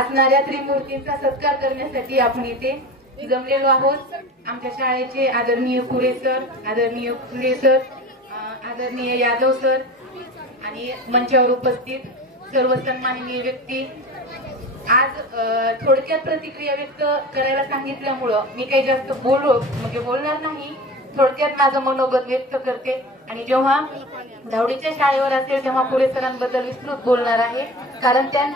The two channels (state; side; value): normal; both; correlation 0.33